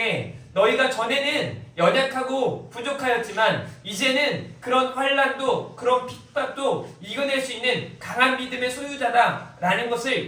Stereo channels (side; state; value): both; identical; correlation 1.00